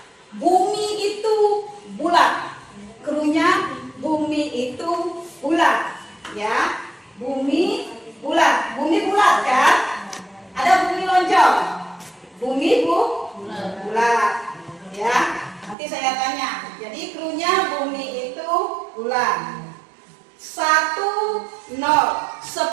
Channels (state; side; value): drops out; left; at 15.8 s